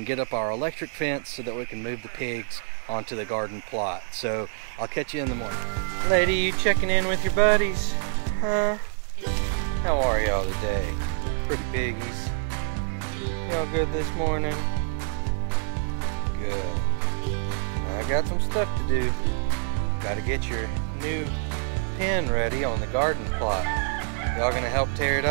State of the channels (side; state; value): left; silent; 57 dB below the other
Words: get up our electric fence so that we can move the pigs onto the garden plot. So I'll catch you in the morning. Lady, you checking in with your buddies? Huh? How are y'all today? Pretty piggies. Y'all good this morning? Good. I got some stuff to do. Gotta get your new pen ready on the garden plot. Y'all gonna help tear it